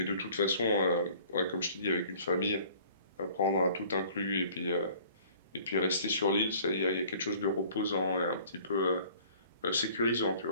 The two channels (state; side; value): inverted; both; correlation -0.52